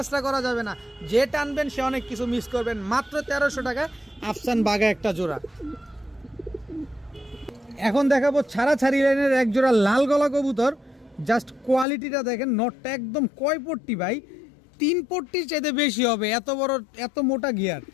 করা যাবে না, যে টানবেন সে অনেক কিছু মিস করবেন। মাত্র 1300 টাকায় আফসান বাঘা একটা জোড়া। এখন দেখাবো ছাড়াছাড়ি লাইনের এক জোড়া লাল গলা কবুতর, জাস্ট কোয়ালিটিটা দেখেন। নটটা একদম কয় পট্টি ভাই, 3 পট্টির চাইতে বেশি হবে, এত বড় এত মোটা গিয়ার।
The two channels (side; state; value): right; drops out; at 11.9 s